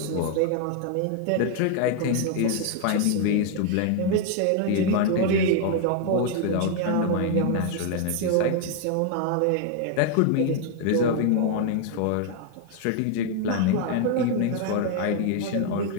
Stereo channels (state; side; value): different; both; correlation 0.00